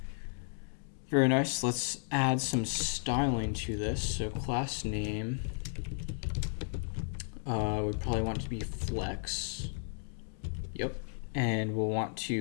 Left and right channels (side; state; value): right; silent; digital silence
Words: Very nice. Let's add some styling to this. So class name, we probably want it to be flex. Yep. And we'll want